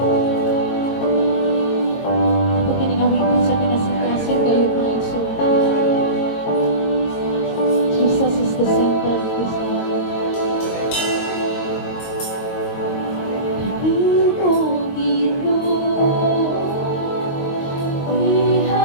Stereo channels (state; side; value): late; right; 22 ms